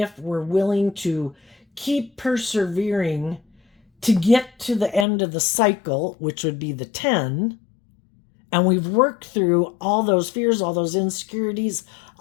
we're willing to keep persevering to get to the end of the cycle, which would be the 10. And we've worked through all those fears, all those insecurities,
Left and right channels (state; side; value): drops out; right; at 5.1 s